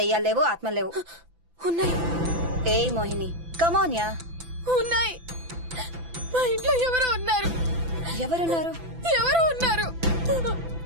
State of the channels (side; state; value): left; late; 5.9 ms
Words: లేవు, ఆత్మలు లేవు. ఉన్నాయి ఏయ్ మోహిని, కమోన్యా. ఉన్నాయి. మా ఇంట్లో ఎవరో ఉన్నారు. ఎవరున్నారు? ఎవరో ఉన్నారు.